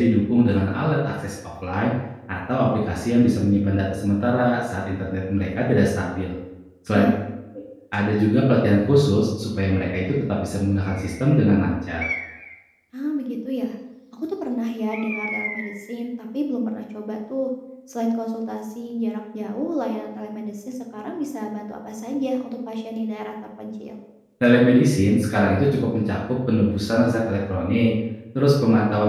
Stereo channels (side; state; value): both; identical; correlation 1.00